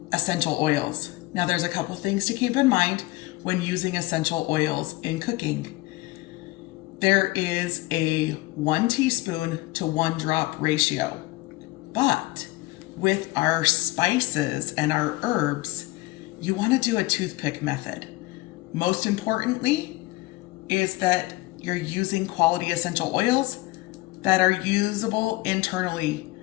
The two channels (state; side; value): quieter; right; 20.4 dB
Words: essential oils. Now, there's a couple things to keep in mind when using essential oils in cooking. There is a 1 teaspoon to 1 drop ratio, but with our spices and our herbs, you want to do a toothpick method. Most importantly is that you're using quality essential oils that are usable internally.